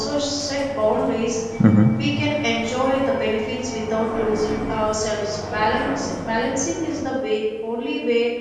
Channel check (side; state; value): both; identical; correlation 1.00